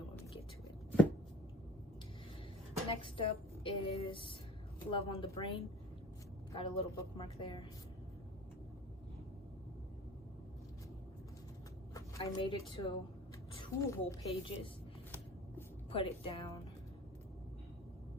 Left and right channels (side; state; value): both; normal; correlation 0.44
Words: when we get to it. Next up is Love on the Brain. Got a little bookmark there. I made it to 2 whole pages. Put it down.